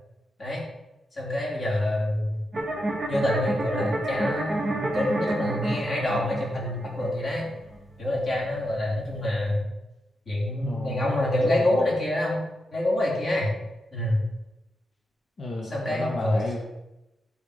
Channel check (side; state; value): both; normal; correlation 0.86